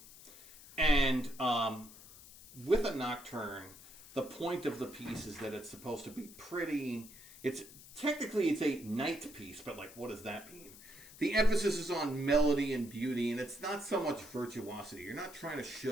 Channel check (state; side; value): noise; left; hiss, 18 dB below the sound